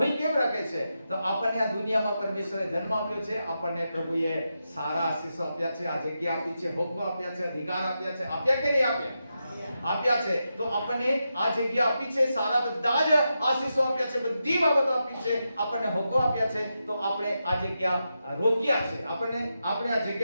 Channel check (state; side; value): inverted; both; correlation -0.87